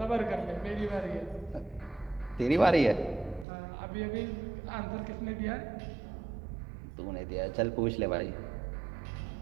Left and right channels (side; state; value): left; drops out; at 3.5 s